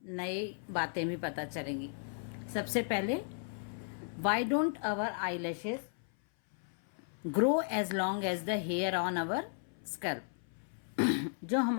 नई बातें भी पता चलेंगी। सबसे पहले, why don't our eye lashes grow as long as the hair on our scalp. जो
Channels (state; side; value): silent; right; 54 dB below the other